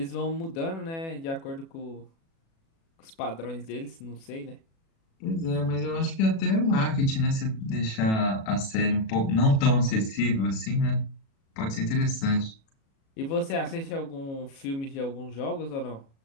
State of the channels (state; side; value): late; right; 36 ms